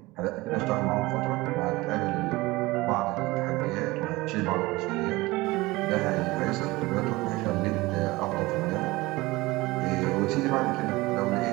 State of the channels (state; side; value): quieter; left; 20.9 dB